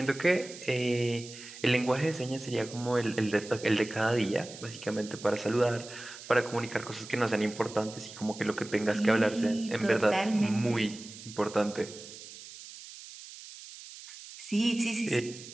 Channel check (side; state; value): right; noise; hiss, 15 dB below the sound